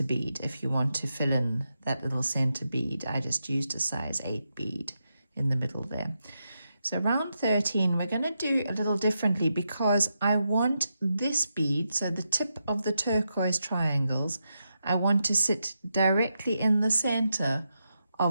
bead, if you want to fill in that little center bead, I just used a size 8 bead in the middle there. So round 13, we're going to do a little differently because I want this bead, so the tip of the turquoise triangles, I want to sit directly in the center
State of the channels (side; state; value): both; inverted; correlation -0.86